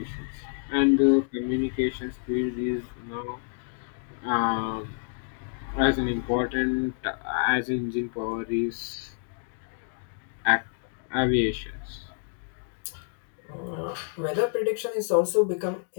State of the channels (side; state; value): right; silent; digital silence